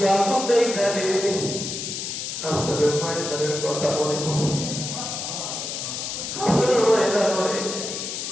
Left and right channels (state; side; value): noise; left; hiss, 5 dB below the sound